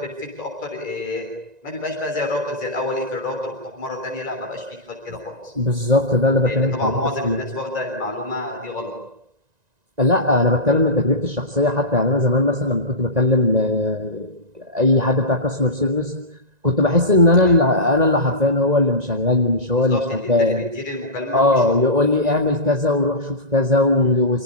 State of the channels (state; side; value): late; left; 1.9 ms